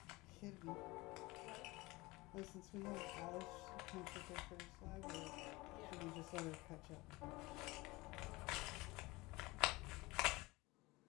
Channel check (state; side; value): quieter; right; 22.1 dB